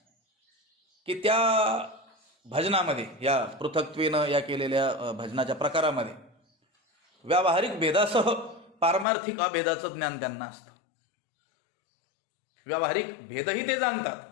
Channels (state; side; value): drops out; right; at 9.1 s